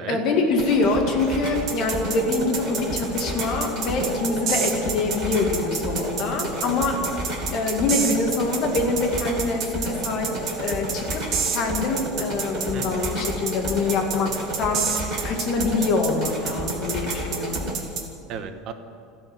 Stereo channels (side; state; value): both; normal; correlation 0.30